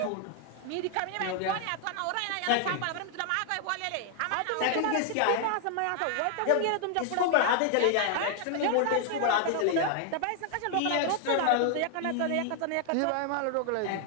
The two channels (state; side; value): different; both; correlation 0.00